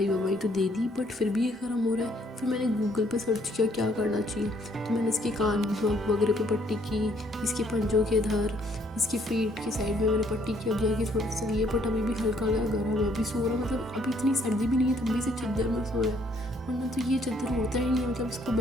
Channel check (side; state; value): both; normal; correlation 0.66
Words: तो दे दी बट फिर भी ये गर्म हो रहा है। फिर मैंने गूगल पे सर्च किया क्या करना चाहिए, तो मैंने इसके कान वगैरह पे पट्टी की, इसके पंजों के इधर, इसकी पेट की साइड में मैंने पट्टी की। अब जाके थोड़ा सा ये बट अभी भी हल्का गर्म है, अभी सो रहा। मतलब अभी इतनी सर्दी भी नहीं है तब भी से चद्दर में सो रहा है, वरना तो ये चद्दर होता ही नहीं है। मतलब इसको